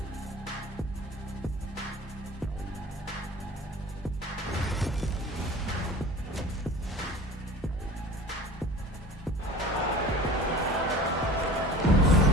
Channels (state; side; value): normal; both; correlation 0.41